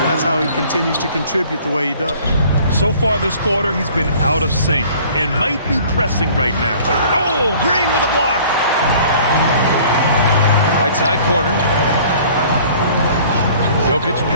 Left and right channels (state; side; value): inverted; both; correlation -0.51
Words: that's how he continues to contribute the way he does. So far this quarter, he's been out of sync and might be pressing right now. Oh, Green with a block. Right side corner. Jokic